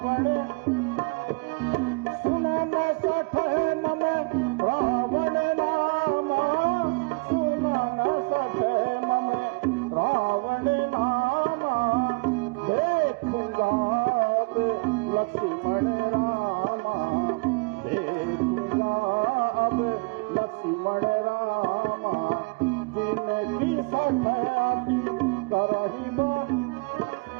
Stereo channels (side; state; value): left; quieter; 29.1 dB